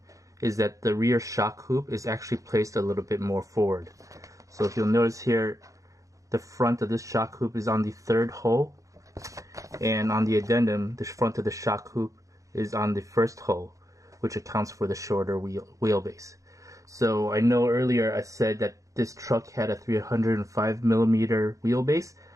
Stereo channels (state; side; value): late; left; 0.16 ms